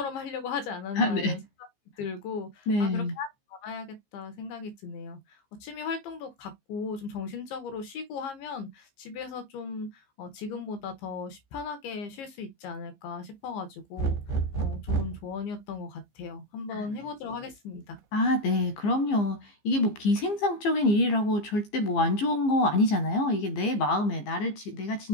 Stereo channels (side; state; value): right; late; 15 ms